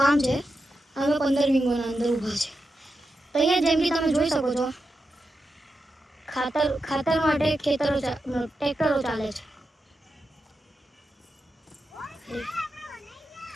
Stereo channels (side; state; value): both; normal; correlation 0.88